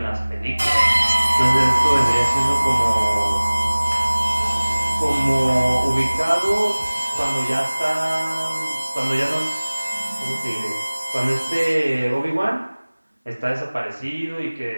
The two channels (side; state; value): both; inverted; correlation -1.00